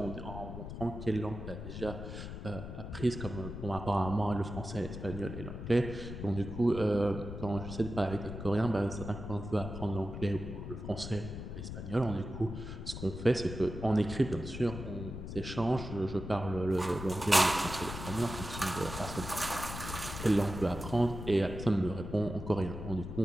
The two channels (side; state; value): left; noise; rumble, 8 dB below the sound